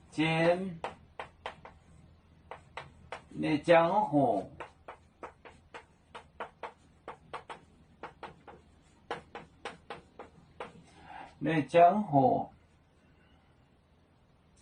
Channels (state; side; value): identical; both; correlation 1.00